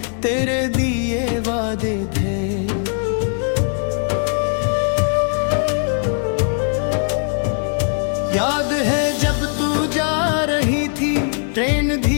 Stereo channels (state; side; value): silent; right; 64 dB below the other